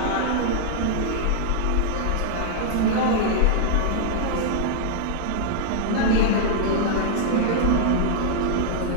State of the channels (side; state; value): both; different; correlation -0.01